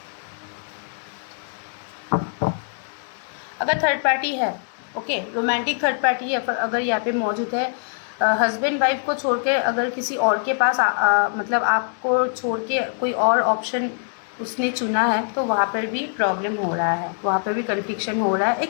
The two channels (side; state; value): right; silent; digital silence